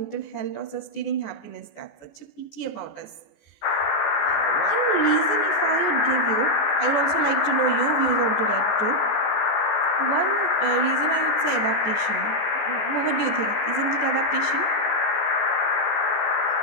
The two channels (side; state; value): right; late; 14 ms